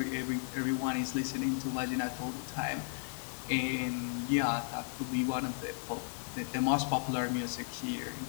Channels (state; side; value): silent; right; digital silence